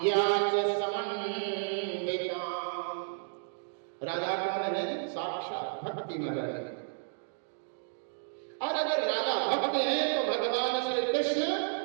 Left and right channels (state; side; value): silent; left; digital silence